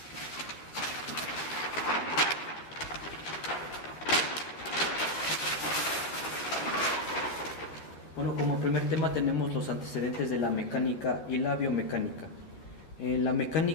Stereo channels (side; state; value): right; late; 12 ms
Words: Bueno, como primer tema tenemos los antecedentes de la mecánica y la biomecánica. La